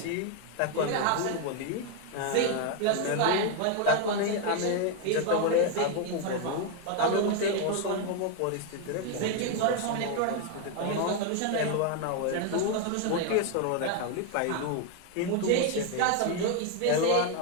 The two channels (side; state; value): both; different; correlation 0.01